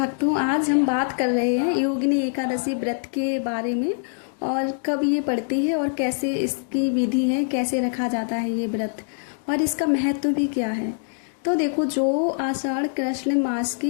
आज हम बात कर रहे हैं योगिनी एकादशी व्रत के बारे में। और कब ये पड़ती है और कैसे इसकी विधि है, कैसे रखा जाता है ये व्रत, और इसका महत्व भी क्या है। तो देखो, जो आषाढ़ कृष्ण मास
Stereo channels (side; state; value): right; silent; digital silence